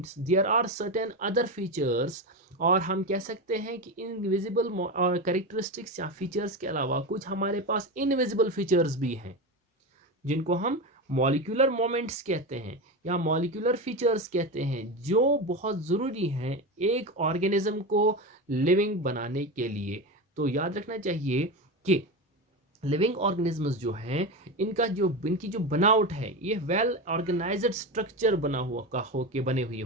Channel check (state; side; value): normal; both; correlation 0.19